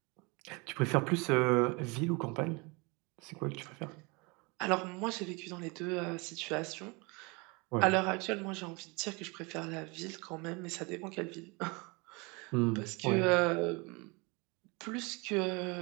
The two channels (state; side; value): quieter; left; 28.1 dB